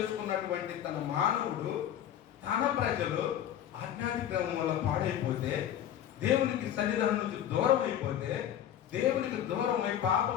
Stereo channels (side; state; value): right; quieter; 10.6 dB